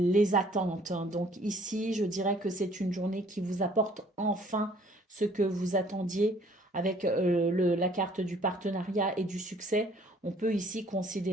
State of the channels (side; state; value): both; normal; correlation 0.58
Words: attentes. Donc ici, je dirais que c'est une journée qui vous apporte enfin ce que vous attendiez avec la carte du partenariat et du succès. On peut ici